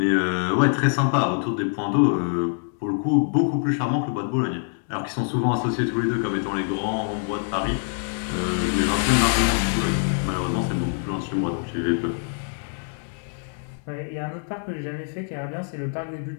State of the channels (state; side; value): silent; right; 62 dB below the other